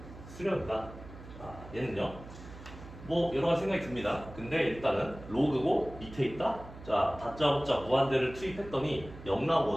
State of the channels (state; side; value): noise; right; hum, 15 dB below the sound